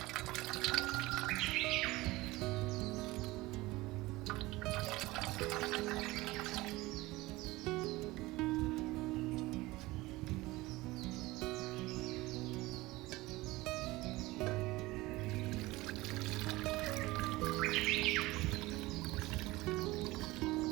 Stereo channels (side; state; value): left; quieter; 20.1 dB